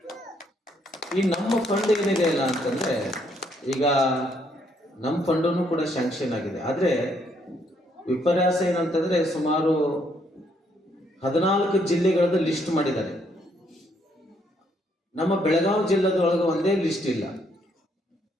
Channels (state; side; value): normal; both; correlation 0.71